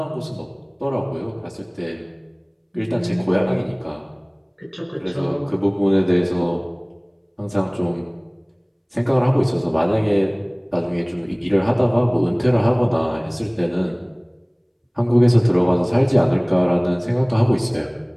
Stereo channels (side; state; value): both; identical; correlation 1.00